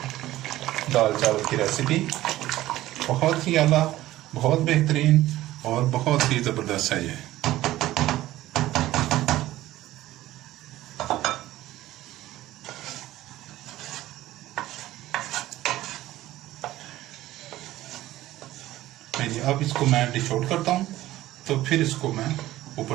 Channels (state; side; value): quieter; left; 15.5 dB